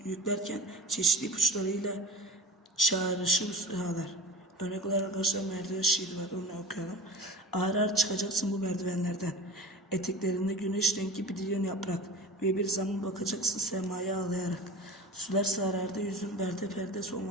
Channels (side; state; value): both; normal; correlation 0.34